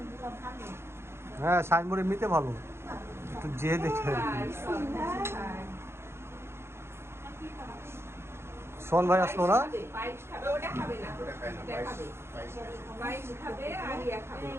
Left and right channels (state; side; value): late; left; 0.12 ms